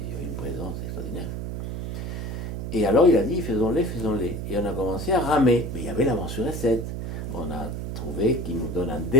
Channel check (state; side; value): noise; right; hum, 4 dB below the sound